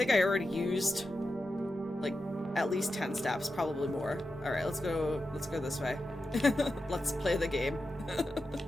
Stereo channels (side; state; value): both; normal; correlation 0.90